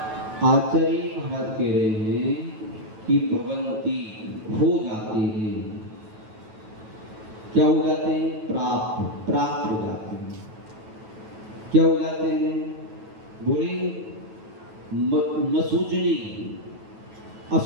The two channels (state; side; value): late; left; 9.2 ms